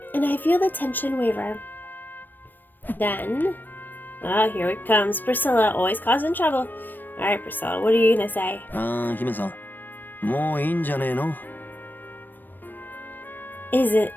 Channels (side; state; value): right; late; 0.092 ms